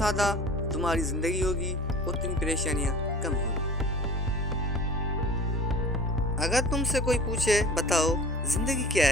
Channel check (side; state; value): both; normal; correlation 0.43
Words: तुम्हारी जिंदगी होगी उतनी परेशानियां कम होंगी। अगर तुमसे कोई पूछे बताओ जिंदगी क्या